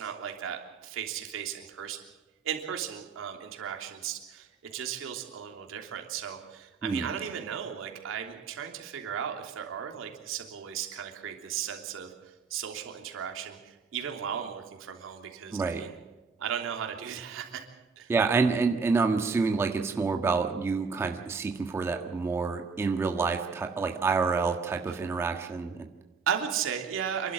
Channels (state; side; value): quieter; left; 5.1 dB